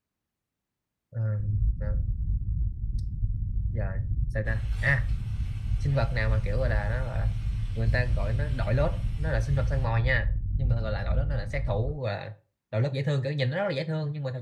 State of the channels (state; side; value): identical; both; correlation 1.00